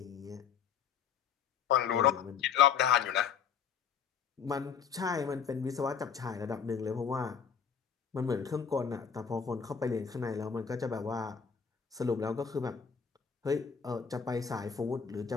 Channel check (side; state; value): right; quieter; 7.0 dB